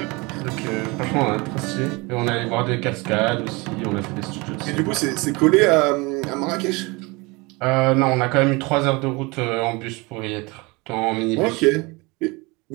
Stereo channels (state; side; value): quieter; left; 25.7 dB